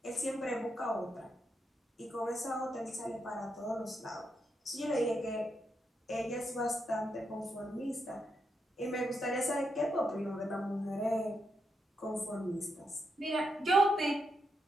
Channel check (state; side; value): normal; both; correlation 0.82